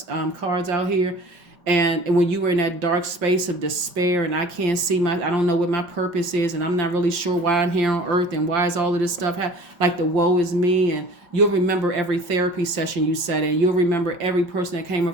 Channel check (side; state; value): left; late; 5.4 ms